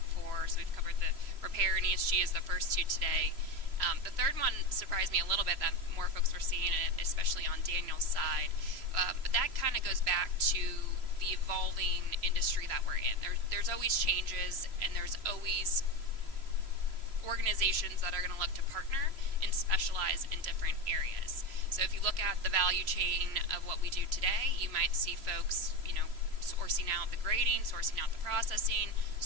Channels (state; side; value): late; left; 3.0 ms